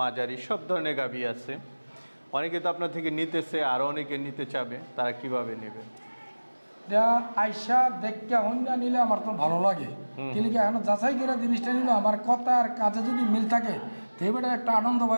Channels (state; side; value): inverted; both; correlation -1.00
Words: সব ধরনের গাভী আছে। অনেকে তো আপনার থেকে নিতেছে, আরও অনেকে নিতে চাবে, তারা কিভাবে নেবে? এটা আইসা দেখতে হন্যা নিলে আমার তো ভালো লাগে, কিন্তু কি এখন যাচাই করে জিনিসটা নিলে আমার কথা আর কাজে যদি মিল থাকে তেবেটা একটা আনন্দ